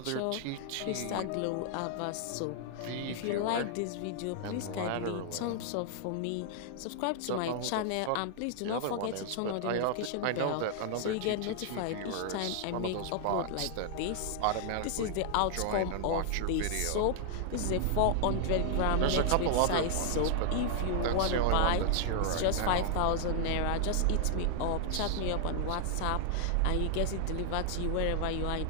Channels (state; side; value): different; both; correlation -0.01